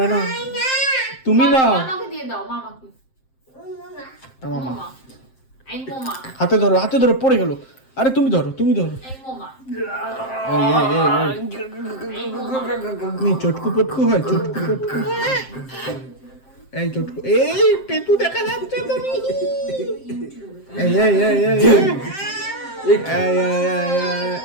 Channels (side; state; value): right; late; 7.6 ms